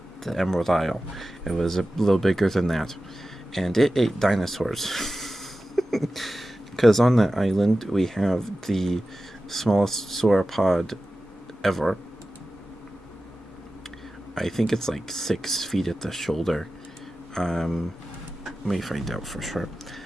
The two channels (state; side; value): normal; both; correlation 0.94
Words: the Emerald Isle. It was a little bigger than that, and it ate dinosaurs. Because on that island we have the smallest sauropod ever. I think it's like 6 feet at the shoulder. Let me find out for sure.